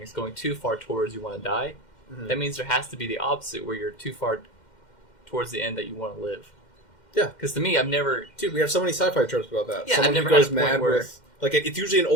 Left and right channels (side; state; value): right; late; 2.1 ms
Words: going too far towards you want to die, that means there has to be the opposite, where you're too far towards the end that you want to live. Yeah. Because to me, I've never... Dude, we have so many sci-fi tropes about that. Yeah, someone I've never who goes had a point mad where... with... Like, it's usually an